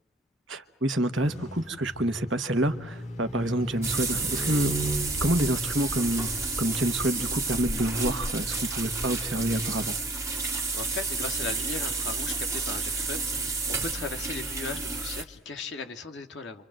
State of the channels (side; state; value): both; normal; correlation 0.54